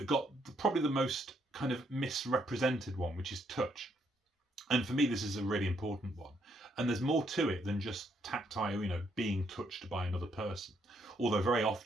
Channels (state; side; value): normal; both; correlation 0.73